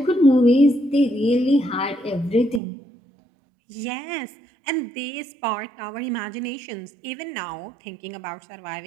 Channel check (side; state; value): left; drops out; at 2.6 s